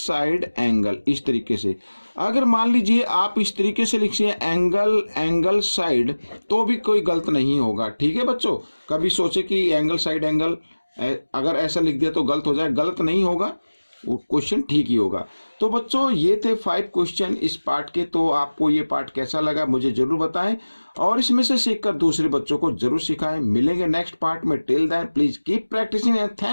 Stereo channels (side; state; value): both; inverted; correlation -1.00